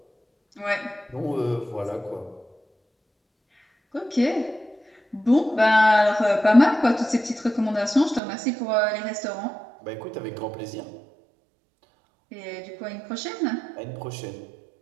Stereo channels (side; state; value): left; drops out; at 8.2 s